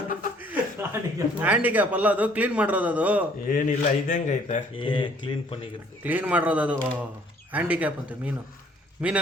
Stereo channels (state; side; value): normal; both; correlation 0.60